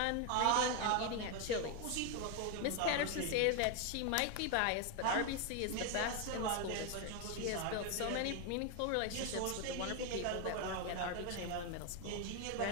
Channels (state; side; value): different; both; correlation 0.01